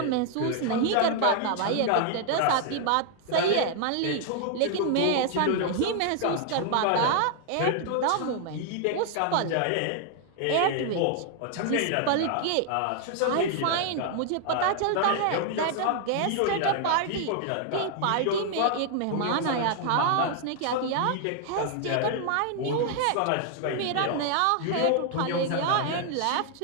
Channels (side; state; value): both; different; correlation 0.00